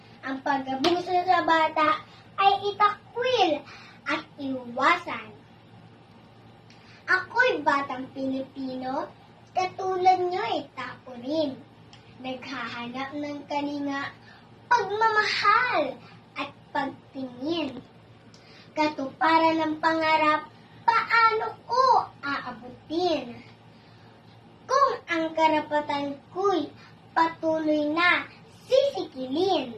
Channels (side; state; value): both; identical; correlation 1.00